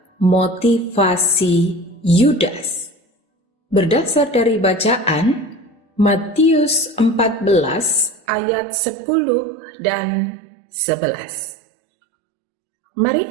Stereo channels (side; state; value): left; drops out; at 8.2 s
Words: motivasi Yudas. Berdasar dari bacaan Matius 14 ayat 10 dan 11. Mari